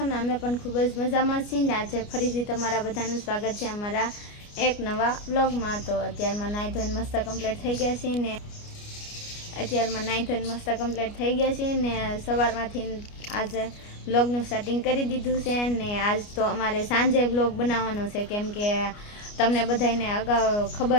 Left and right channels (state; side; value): late; right; 29 ms